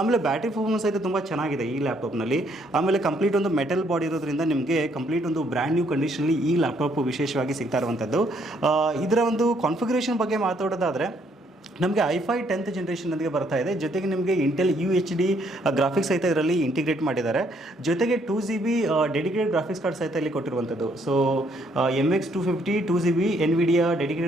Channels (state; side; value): normal; both; correlation 0.69